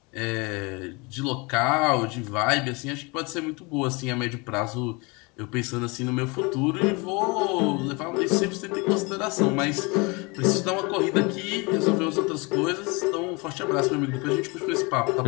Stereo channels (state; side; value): quieter; right; 27.9 dB